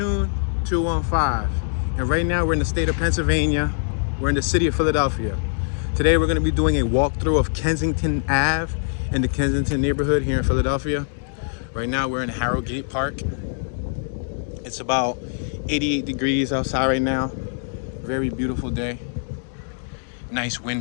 215, and right now we're in the state of Pennsylvania. We're in the city of Philadelphia. Today we're going to be doing a walkthrough of Kensington Ave in the Kensington neighborhood here in Philadelphia. Right now we're in Harrogate Park. It's about 88 degrees outside right now. Very beautiful day. Nice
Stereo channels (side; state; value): right; silent; digital silence